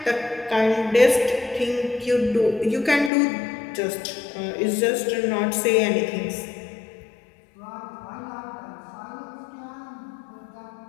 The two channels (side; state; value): right; drops out; at 3.1 s